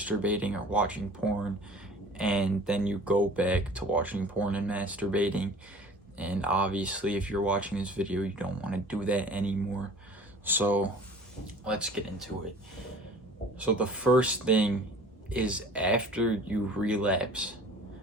or watching porn, and then you go back to watching porn and masturbating. And obviously, if you're watching this video, you don't want to do that anymore. So let's get into it. So the first thing is, after you relapse,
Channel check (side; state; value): both; normal; correlation 0.46